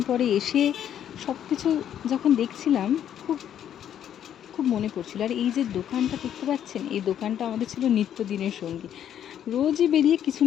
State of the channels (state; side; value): quieter; right; 10.0 dB